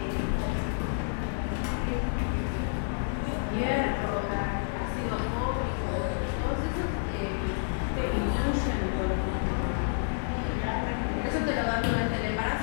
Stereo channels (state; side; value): silent; right; digital silence